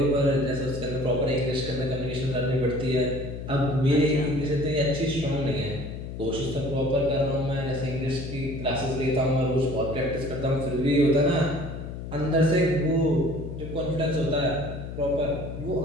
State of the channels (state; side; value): noise; left; hum, 8 dB below the sound